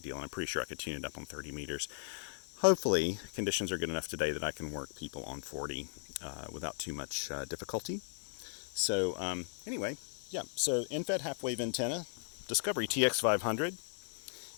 deal. And I'm pretty sure I could tune it up on 30 meters. Hopefully, conditions are good enough today that I can work people on 40 without too much difficulty. So anyway, yeah, so end-fed half-wave antenna, Discovery TX-500.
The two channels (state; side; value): silent; right; 53 dB below the other